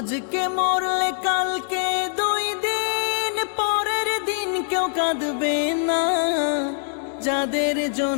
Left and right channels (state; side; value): silent; right; digital silence